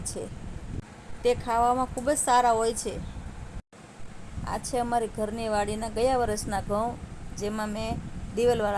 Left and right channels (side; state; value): both; identical; correlation 1.00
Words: છે. તે ખાવામાં ખૂબ જ સારા હોય છે. આ છે અમારી ઘરની વાડીના ગયા વર્ષના ઘઉં, જેમાં મેં